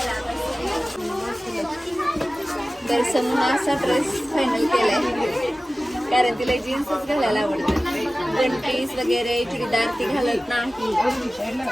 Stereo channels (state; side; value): normal; both; correlation 0.96